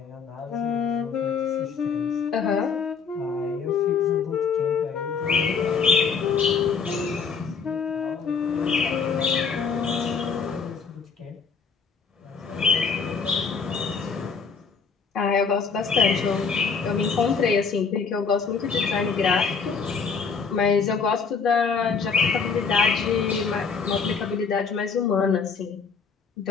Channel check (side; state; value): right; quieter; 5.5 dB